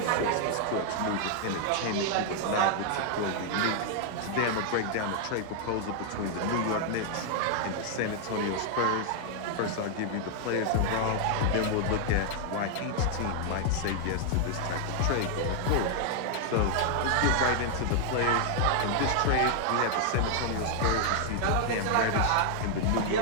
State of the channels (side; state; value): both; different; correlation 0.00